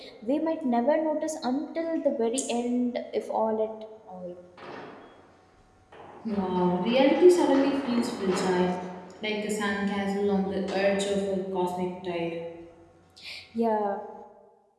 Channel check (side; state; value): both; identical; correlation 1.00